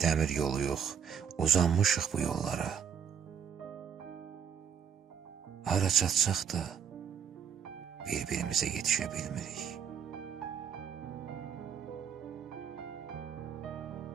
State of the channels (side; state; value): left; quieter; 7.8 dB